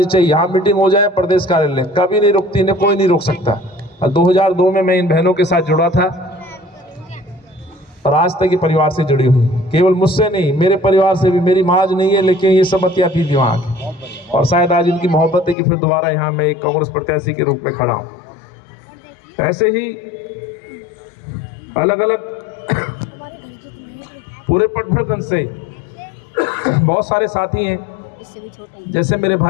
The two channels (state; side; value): drops out; right; at 15.6 s